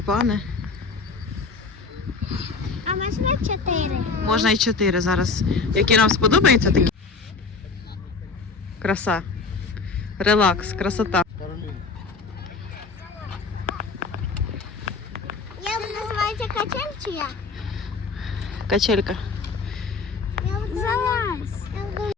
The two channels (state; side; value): quieter; right; 4.5 dB